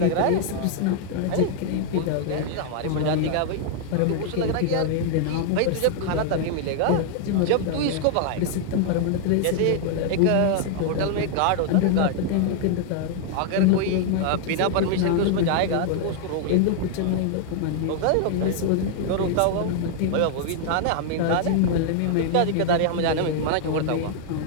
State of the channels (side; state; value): both; different; correlation 0.00